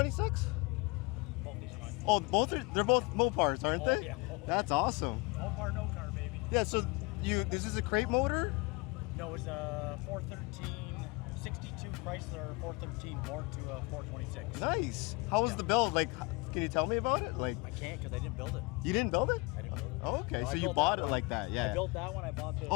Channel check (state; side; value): quieter; right; 26.2 dB